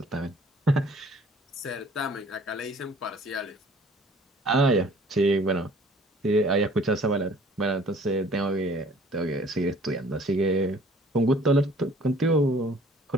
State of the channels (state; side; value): normal; both; correlation 0.54